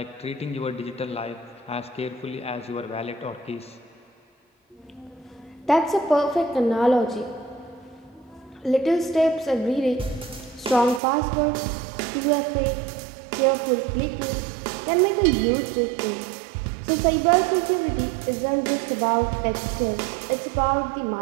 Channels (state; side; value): drops out; left; at 11.0 s